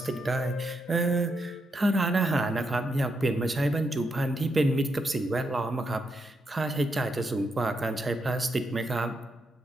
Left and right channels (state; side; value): normal; both; correlation 0.81